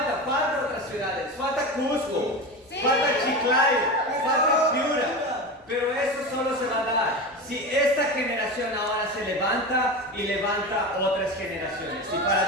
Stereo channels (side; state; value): both; normal; correlation 0.25